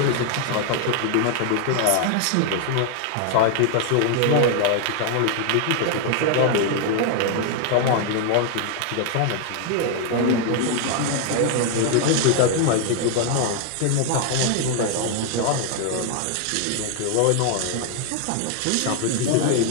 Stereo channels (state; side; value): different; both; correlation 0.00